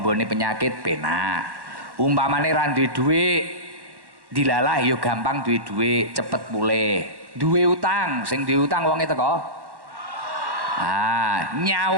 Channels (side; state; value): left; late; 1.1 ms